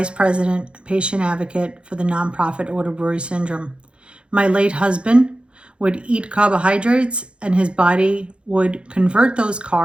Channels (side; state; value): left; late; 0.057 ms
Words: President, Patient Advocate for the nonprofit auto-brewery syndrome. My late husband would eat carbohydrates and his body would convert those